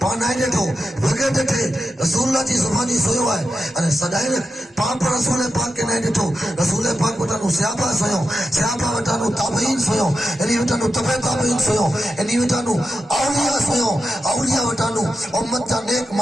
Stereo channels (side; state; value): both; normal; correlation 0.89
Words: पान आए ॾिठो वगे ॾिठे रसूलुल्लाह जी ज़ुबानी सोयो है अने सदाई पाप रसूल पाक के न ॾिठो रसूल पाक वटानो सहाबा सोयो सहाबा वटानो ताबईन सोयो इनी वटानो तबे ताबईन सोयो इनी वटानो औलिया सोयो औलिया वटानो उम्मत जा नेक